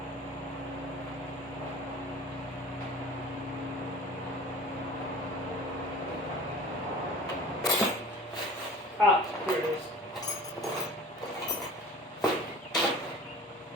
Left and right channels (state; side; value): normal; both; correlation 0.42